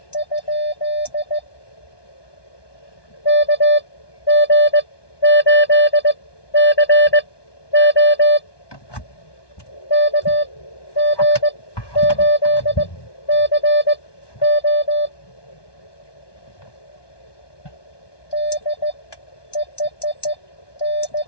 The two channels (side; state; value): right; late; 1.2 ms